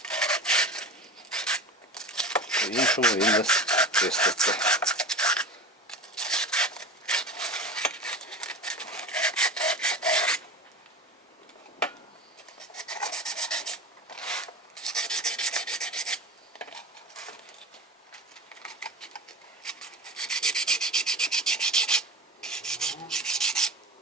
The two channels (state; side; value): normal; both; correlation 0.30